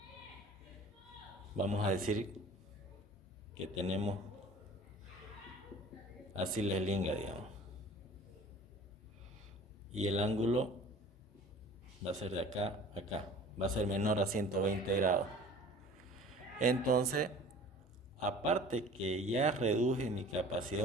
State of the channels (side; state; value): both; normal; correlation 0.45